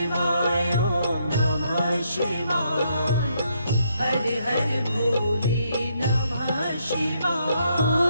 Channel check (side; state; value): both; inverted; correlation -0.75